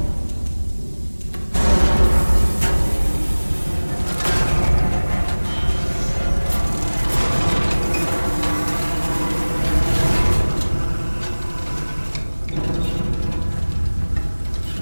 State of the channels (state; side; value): inverted; both; correlation -1.00